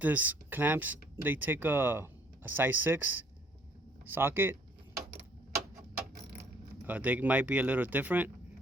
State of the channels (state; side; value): normal; both; correlation 0.60